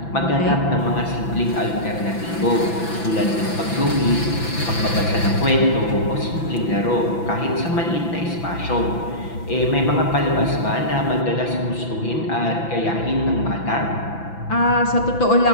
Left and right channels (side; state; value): right; late; 6.0 ms